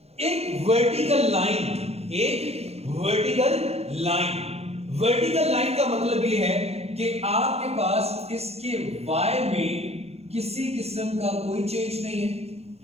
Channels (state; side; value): late; left; 0.30 ms